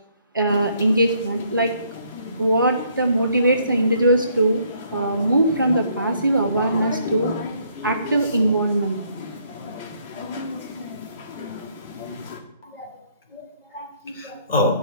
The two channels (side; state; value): both; inverted; correlation -0.67